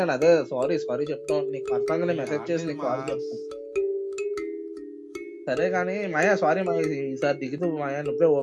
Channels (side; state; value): both; identical; correlation 1.00